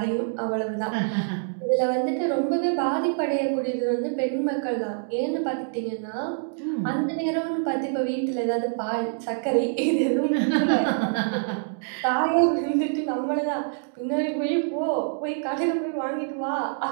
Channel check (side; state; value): left; silent; digital silence